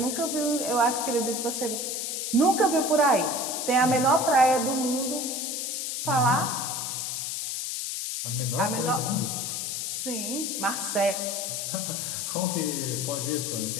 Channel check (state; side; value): noise; left; hiss, 3 dB below the sound